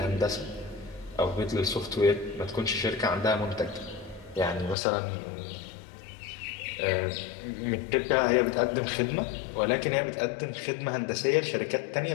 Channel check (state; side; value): drops out; right; at 4.8 s